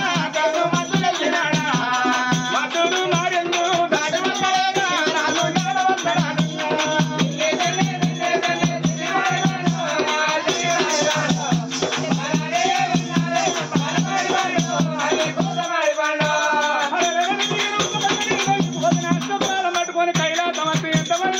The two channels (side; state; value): both; identical; correlation 1.00